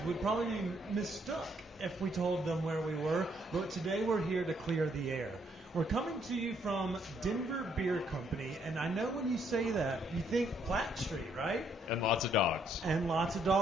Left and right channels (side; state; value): both; normal; correlation 0.70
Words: would probably be mistook if we told them where we were, but today we're here to clear the air. We're coming to you from Denver Beer Company, and I know when you say that, you think Platt Street, right? And lots of dogs. And lots of